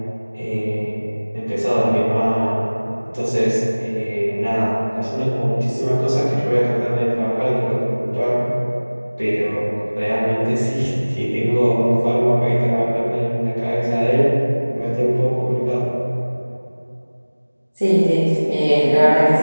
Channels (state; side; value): inverted; both; correlation -1.00